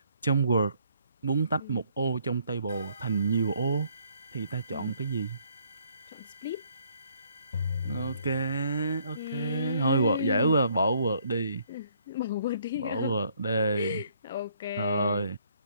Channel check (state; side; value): inverted; both; correlation -0.66